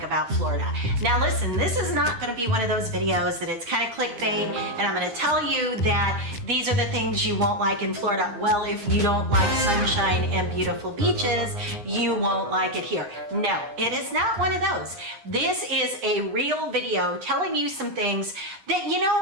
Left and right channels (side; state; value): left; late; 9.7 ms